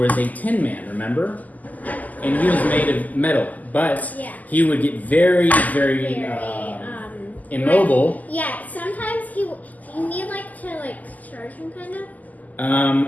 a Tin Man, remember? And he was made of metal, but he would get very, very immobile. Yeah, sometimes you need to charge him kind of.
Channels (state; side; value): late; right; 0.079 ms